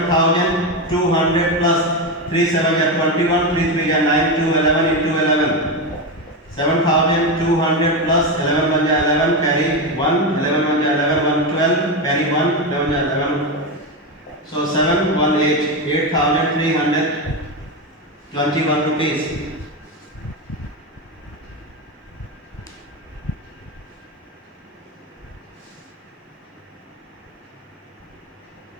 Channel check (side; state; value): both; normal; correlation 0.13